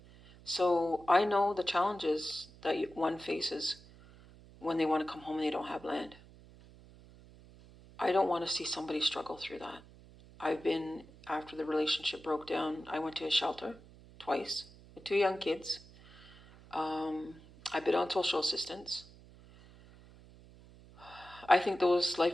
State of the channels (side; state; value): right; noise; hum, 22 dB below the sound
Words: So I know the challenges that one faces when they want to come home and they don't have land. I don't want to see somebody struggle through that. After the relationship broke down, I went to a shelter twice with 2 young kids. I've been on social assistance. I think those